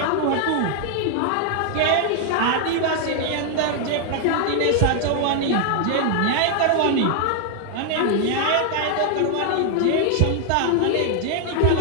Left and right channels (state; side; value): different; both; correlation 0.00